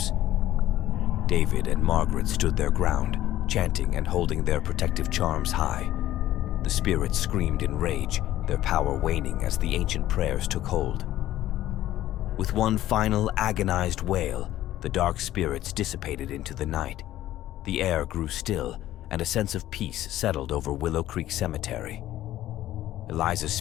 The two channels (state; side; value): quieter; right; 13.9 dB